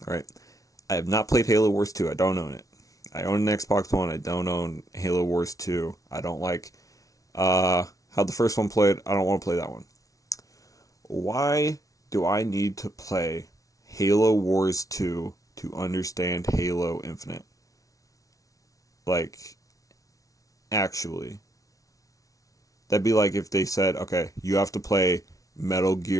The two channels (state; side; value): late; right; 0.17 ms